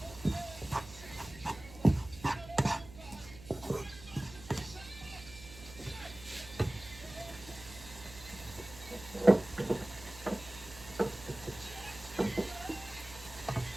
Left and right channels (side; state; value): right; noise; hum, 16 dB below the sound